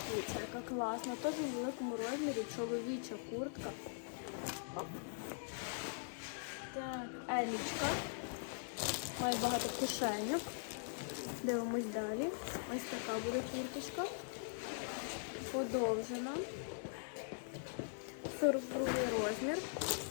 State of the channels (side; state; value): right; silent; digital silence